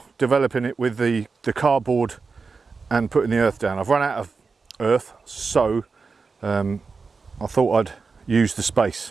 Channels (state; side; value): quieter; left; 4.7 dB